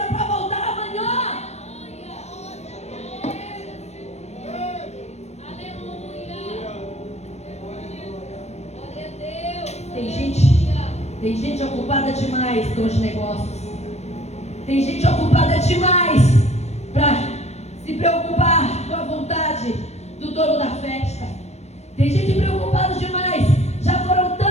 para voltar amanhã. Tem gente ocupada demais com os negócios. Tem gente ocupada demais para se preocupar com a vontade do dono da festa. Tem gente preocupada demais. Já foram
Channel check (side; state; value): right; late; 0.32 ms